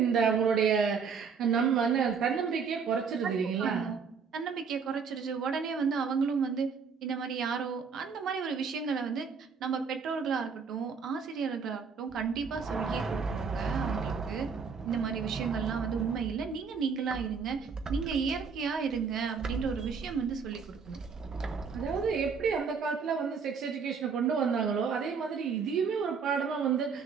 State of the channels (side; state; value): left; quieter; 5.8 dB